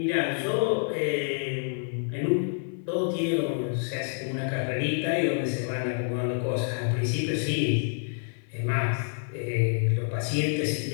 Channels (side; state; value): right; silent; 55 dB below the other